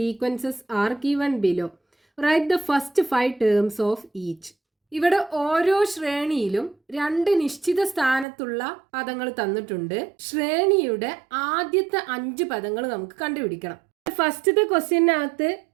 are given below. Write the first 5 terms of each. ഇവിടെ ഓരോ ശ്രേണിയിലും 2 നിശ്ചിത സ്ഥാനത്തുള്ള പദങ്ങൾ തന്നിട്ടുണ്ട്. ശ്രേണിയുടെ ആദ്യത്തെ 5 പദങ്ങൾ നമുക്ക് കണ്ടുപിടിക്കണം. ഫസ്റ്റത്തെ ക്വസ്റ്റ്യനകത്ത്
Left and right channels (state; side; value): drops out; left; at 8.2 s